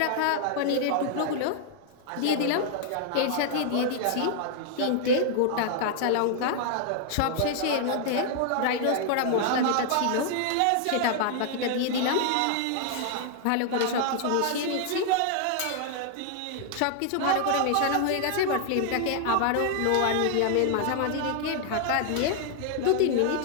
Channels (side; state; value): both; different; correlation 0.00